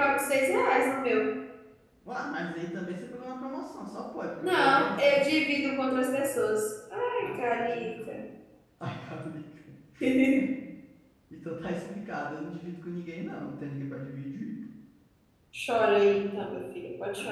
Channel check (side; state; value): both; identical; correlation 1.00